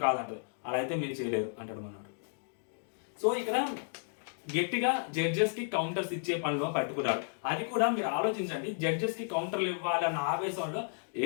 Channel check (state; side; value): silent; right; digital silence